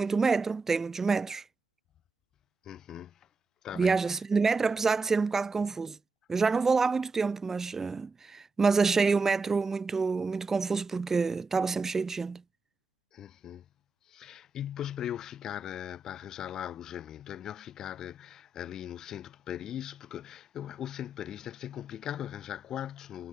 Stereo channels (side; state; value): left; quieter; 3.5 dB